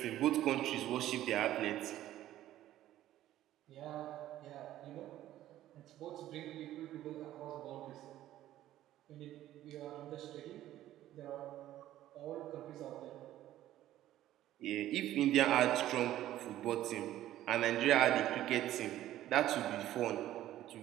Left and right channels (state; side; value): quieter; left; 13.5 dB